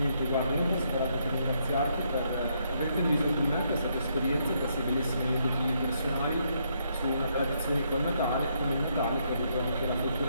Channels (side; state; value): both; inverted; correlation -0.74